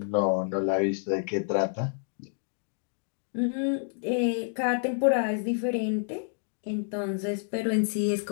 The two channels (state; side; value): silent; right; digital silence